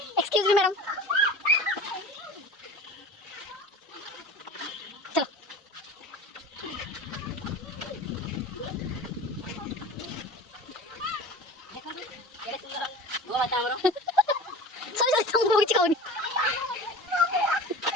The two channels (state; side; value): normal; both; correlation 0.35